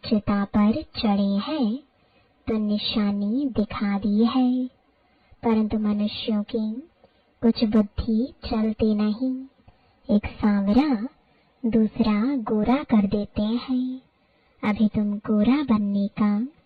चिता पर चढ़े हैं तो निशानी दिखा दी है, परंतु मनुष्यों की कुछ बुद्धि चलती नहीं। एक सांवरा दूसरा गोरा कर देते हैं। अभी तुम गोरा बनने का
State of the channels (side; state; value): both; identical; correlation 1.00